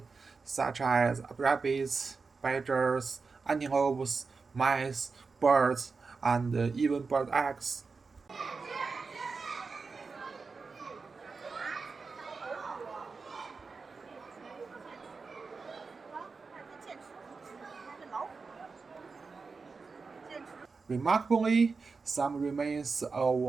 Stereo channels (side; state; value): left; quieter; 4.6 dB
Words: such as rabbits, badgers, antelopes, mice, birds, and even bird eggs. Remarkably, some remains of